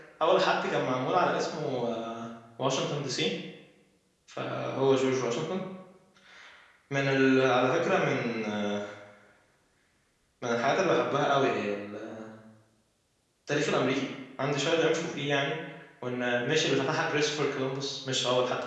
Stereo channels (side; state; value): both; identical; correlation 1.00